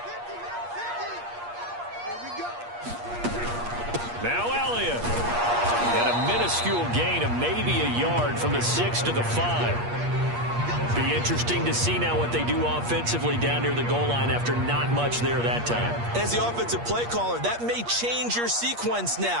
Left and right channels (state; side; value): late; left; 8.5 ms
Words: Now Elliott. And a minuscule gain of maybe a yard from the 6 to the 5. Be interesting to see now what they do offensively down near the goal line after not much there that time. As the offensive play caller, that may change your sequence